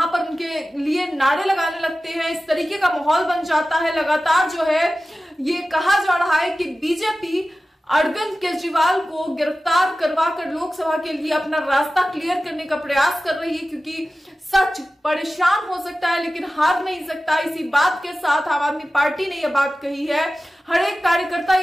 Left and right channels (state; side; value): normal; both; correlation 0.95